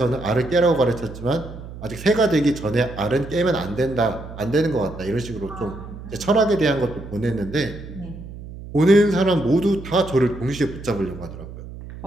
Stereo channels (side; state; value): right; noise; hum, 13 dB below the sound